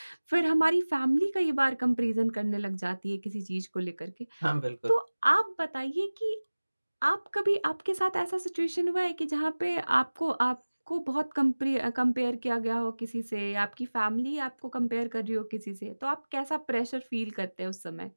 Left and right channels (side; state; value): both; inverted; correlation -1.00